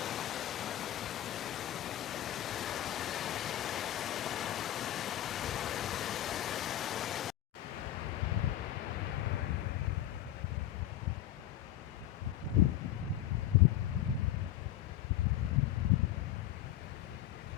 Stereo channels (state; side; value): quieter; right; 12.7 dB